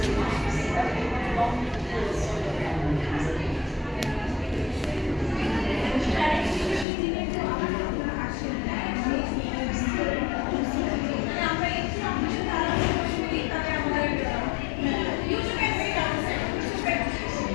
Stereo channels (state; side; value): drops out; right; at 6.9 s